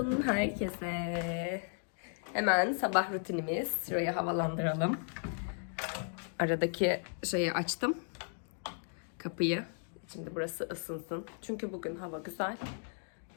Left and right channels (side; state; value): right; silent; 54 dB below the other